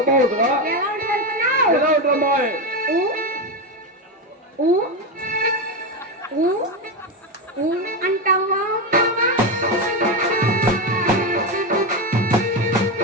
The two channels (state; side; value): normal; both; correlation 0.12